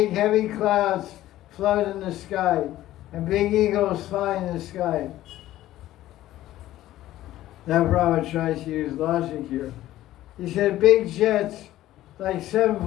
heavy clouds float in the sky and big eagles fly in the sky. Now Prabhupada tries to use logic here. He said big jets like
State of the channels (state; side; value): quieter; right; 14.5 dB